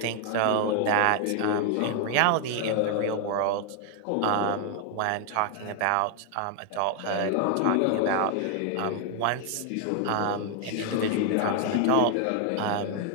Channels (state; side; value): different; both; correlation 0.00